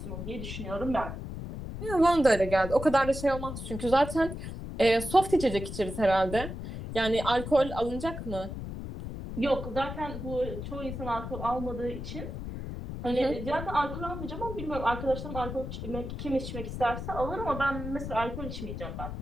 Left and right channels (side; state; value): left; noise; rumble, 7 dB below the sound